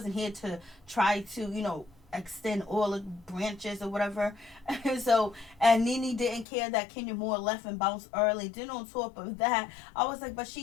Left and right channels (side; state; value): right; drops out; at 6.5 s